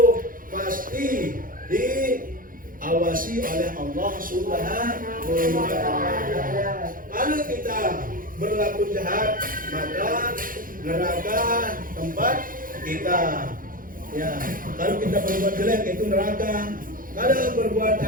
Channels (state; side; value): late; left; 0.40 ms